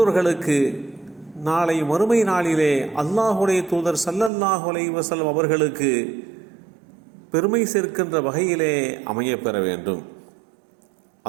நாளை மறுமை நாளிலே அல்லாஹுடைய தூதர் ஸல்லல்லாஹு அலைஹி வஸல்லம் அவர்களுக்கு பெருமை சேர்க்கின்ற வகையிலே அமையப்பெற வேண்டும்.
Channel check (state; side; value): drops out; left; at 4.3 s